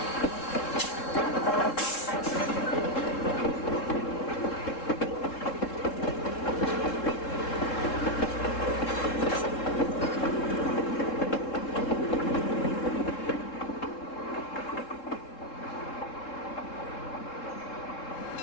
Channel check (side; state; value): right; late; 3.7 ms